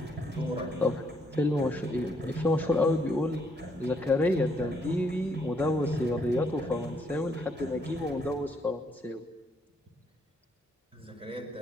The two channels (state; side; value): normal; both; correlation 0.72